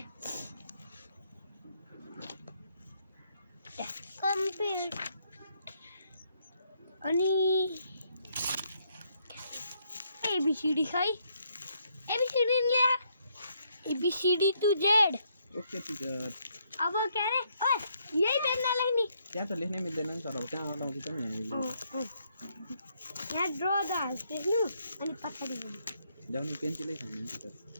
कम्प्लिट अनि एबीसीडी है एबीसीडी ल्या A B C D to Z okay teacher अब क्या अरे ओए यही पेनले लेख्ने त्यहाँ त लेख्नै मिल्दैन नि सर अब त्यहाँ अगाडि पनि यहाँ ड्र द लेख्नु अनि पछाडि जाउँ पेन्सिलै छैन नि टीचर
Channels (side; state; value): both; inverted; correlation -0.73